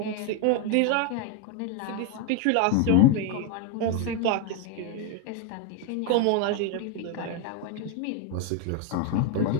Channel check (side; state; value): both; different; correlation 0.01